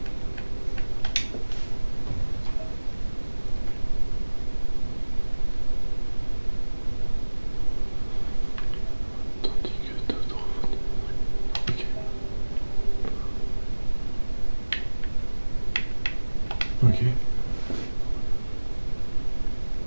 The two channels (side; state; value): both; inverted; correlation -1.00